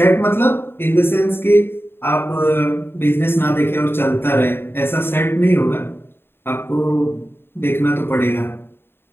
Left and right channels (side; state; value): right; late; 0.11 ms